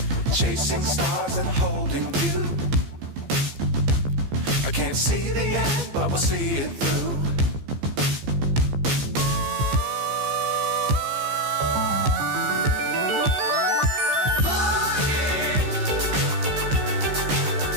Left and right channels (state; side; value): late; left; 15 ms